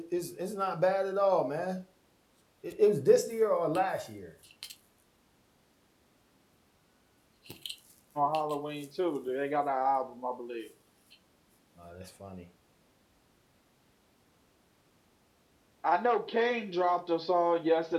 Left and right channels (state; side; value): identical; both; correlation 1.00